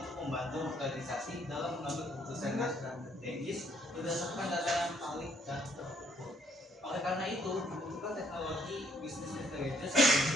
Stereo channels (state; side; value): normal; both; correlation 0.68